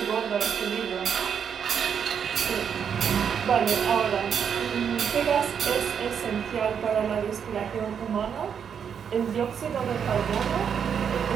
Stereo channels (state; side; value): quieter; left; 7.5 dB